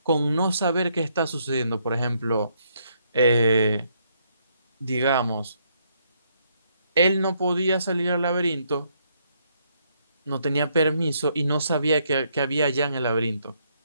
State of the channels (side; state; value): both; inverted; correlation -0.73